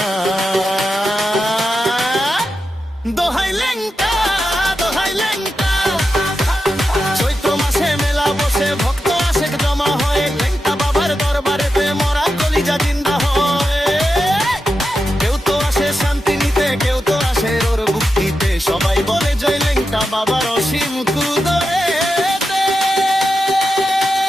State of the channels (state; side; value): normal; both; correlation 0.89